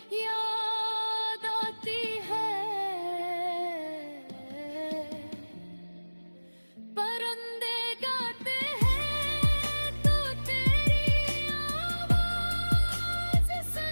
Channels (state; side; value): inverted; both; correlation -1.00